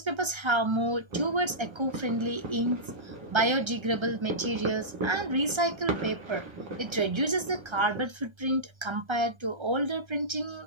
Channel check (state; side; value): late; left; 1.3 ms